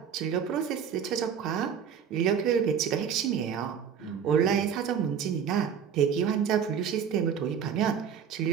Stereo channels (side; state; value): left; quieter; 7.7 dB